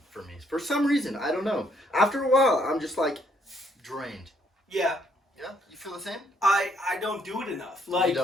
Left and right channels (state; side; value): normal; both; correlation 0.70